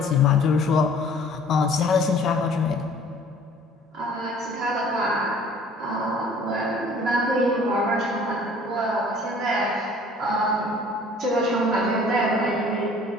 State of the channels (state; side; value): normal; both; correlation 0.52